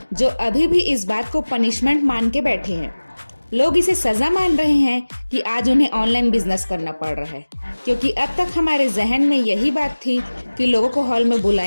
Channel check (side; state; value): both; inverted; correlation -1.00